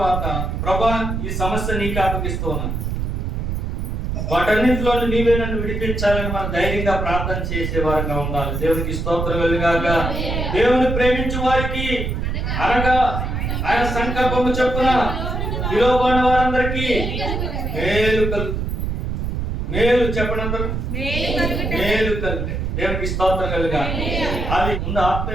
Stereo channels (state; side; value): noise; right; rumble, 2 dB below the sound